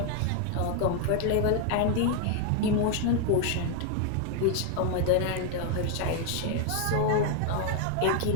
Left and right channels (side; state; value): both; different; correlation 0.00